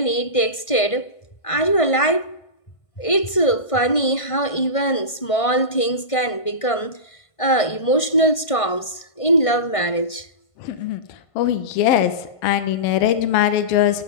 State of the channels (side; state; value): right; late; 1.5 ms